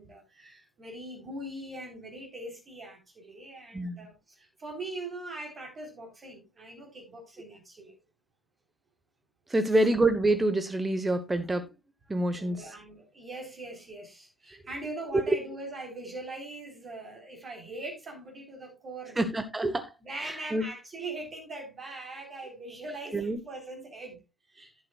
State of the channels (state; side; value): normal; both; correlation 0.81